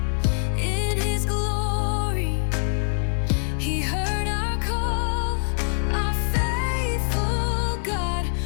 in His glory. He heard our call, our faithful God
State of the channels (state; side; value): silent; right; 62 dB below the other